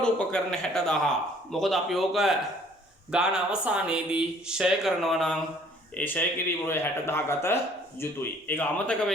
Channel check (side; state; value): both; normal; correlation 0.57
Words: උපකරණ 60,000. මොකද අපි ඕක ගාන අවසානයේදී ෂය කරනවා නම් ඒ ෂය කිරීම වල 60,000 ගත යුතුයි. ඒක අමතක